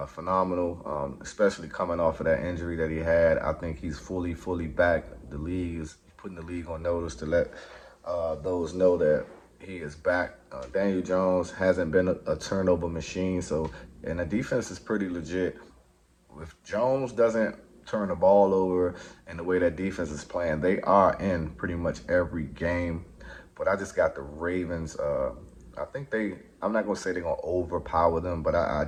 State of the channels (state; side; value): identical; both; correlation 1.00